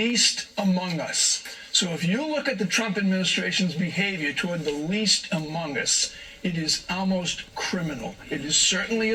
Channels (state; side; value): identical; both; correlation 1.00